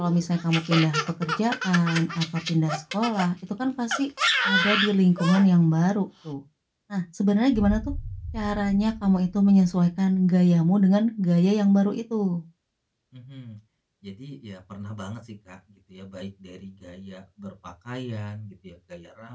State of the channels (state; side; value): identical; both; correlation 1.00